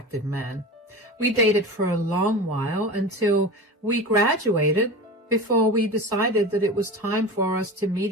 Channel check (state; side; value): normal; both; correlation 0.30